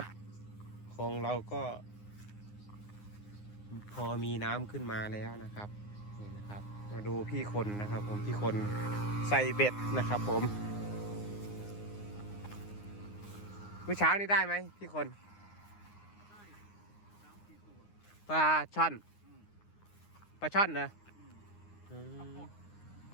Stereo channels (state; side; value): late; right; 9.7 ms